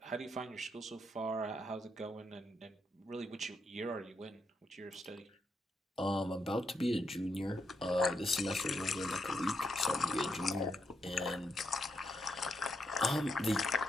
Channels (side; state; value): both; normal; correlation 0.80